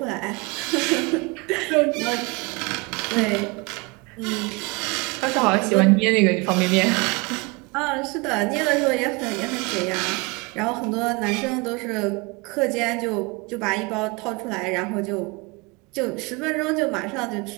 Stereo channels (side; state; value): left; quieter; 27.5 dB